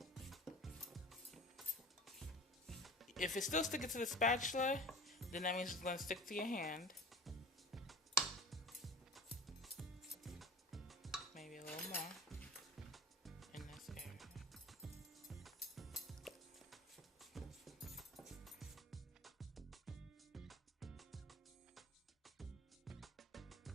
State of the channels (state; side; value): normal; both; correlation 0.38